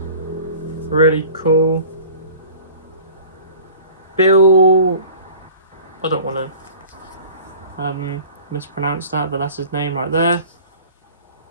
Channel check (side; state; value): both; inverted; correlation -0.44